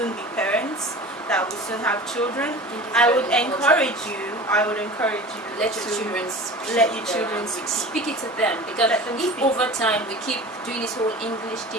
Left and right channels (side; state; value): both; normal; correlation 0.36